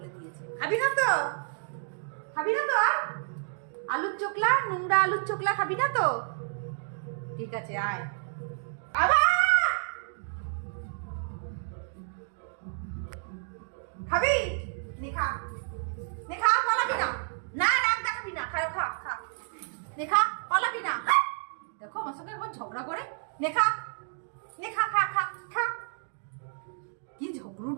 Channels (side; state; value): left; silent; digital silence